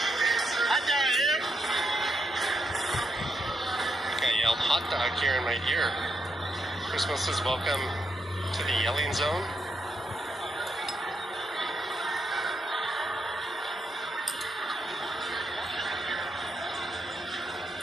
I yelled hot dog here in my ear. Christmas says welcome to the yelling zone.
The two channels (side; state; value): both; normal; correlation 0.80